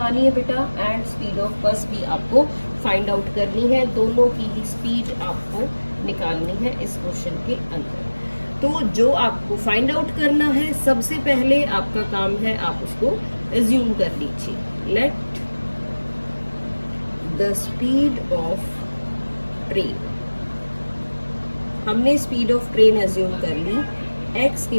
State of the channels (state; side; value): inverted; both; correlation -1.00